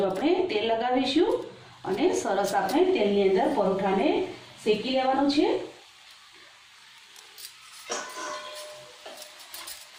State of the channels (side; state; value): both; identical; correlation 1.00